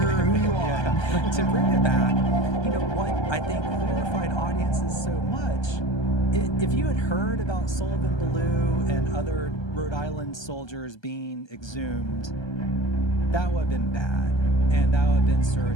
who you are. yeah, to bring it back, what I think horrified audiences so much. If you had heard about Sullivan Ballou and other Rhode Island soldiers being exhumed, that would have been bad, and that would have been sort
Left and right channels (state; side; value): late; right; 1.3 ms